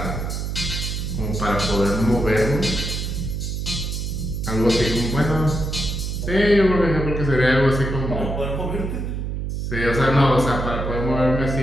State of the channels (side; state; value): right; noise; hum, 3 dB below the sound